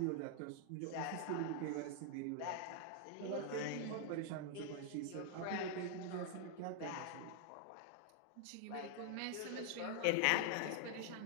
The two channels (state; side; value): different; both; correlation 0.00